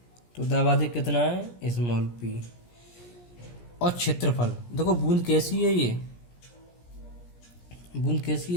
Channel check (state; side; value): late; right; 17 ms